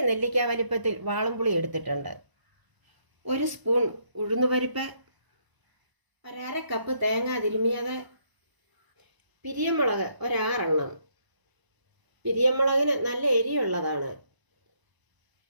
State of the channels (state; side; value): late; left; 1.0 ms